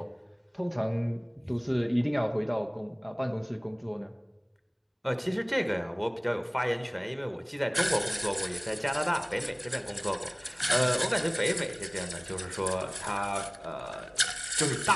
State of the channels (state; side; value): identical; both; correlation 1.00